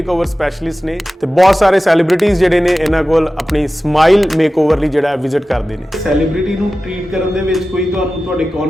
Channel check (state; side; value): normal; both; correlation 0.95